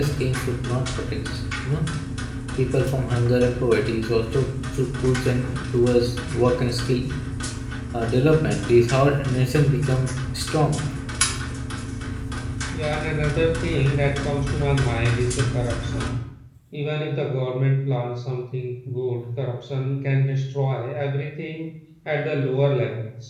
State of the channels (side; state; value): both; identical; correlation 1.00